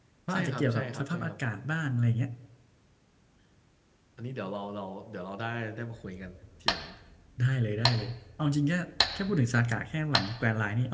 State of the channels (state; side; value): identical; both; correlation 1.00